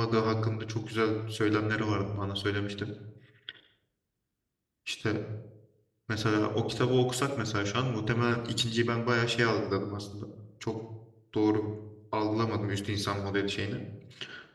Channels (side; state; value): both; identical; correlation 1.00